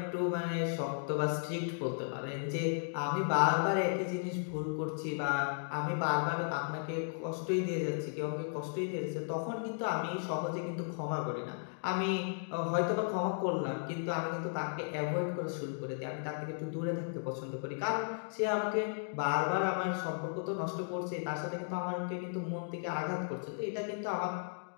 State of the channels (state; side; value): silent; right; digital silence